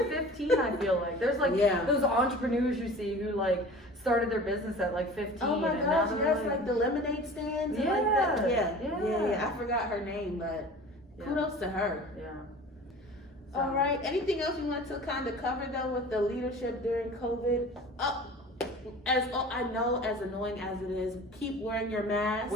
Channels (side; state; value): both; normal; correlation 0.41